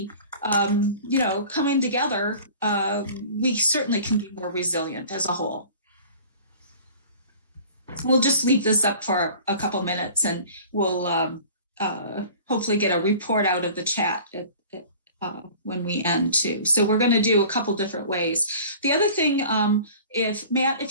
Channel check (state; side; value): inverted; both; correlation -0.44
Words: Coming together, we certainly can be more resilient as a whole. We'll just leave this up for a couple minutes, and we'll hopefully get a report out of the chat when we end too. So we're going to do a couple different ways. The other thing,